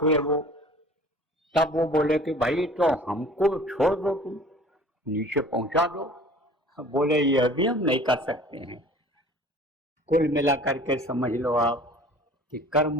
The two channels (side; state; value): both; normal; correlation 0.46